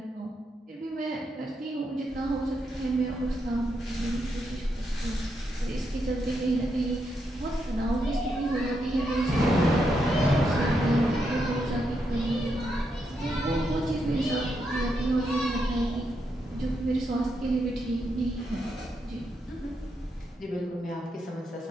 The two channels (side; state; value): both; normal; correlation 0.81